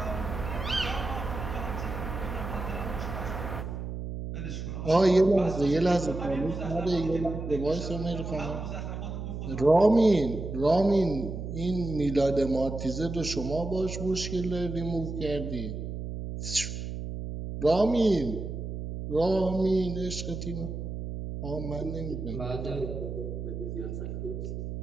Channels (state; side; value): noise; right; hum, 6 dB below the sound